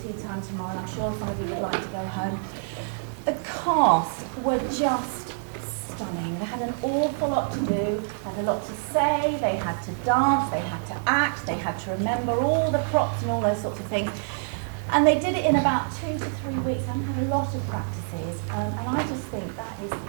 tea time tomorrow, and I'm sure some of you would like to go home. The cast were just stunning. They had an awful lot to do, had a lot to say, they had to dance, they had to act, they had to remember all the props and all those sorts of things. And they did it in about 2 to 3 weeks. I had a lot of practices, and I just think that is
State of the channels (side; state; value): left; silent; 61 dB below the other